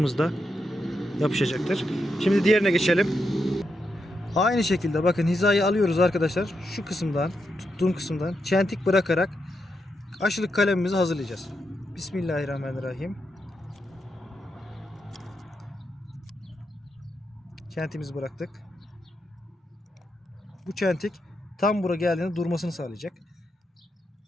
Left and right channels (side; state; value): both; normal; correlation 0.83